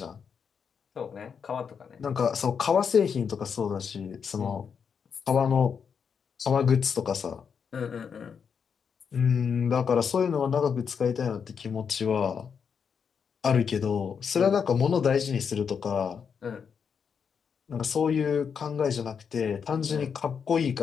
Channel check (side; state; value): right; quieter; 6.6 dB